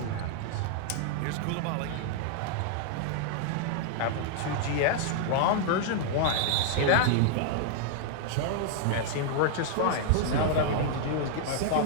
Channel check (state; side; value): different; both; correlation 0.00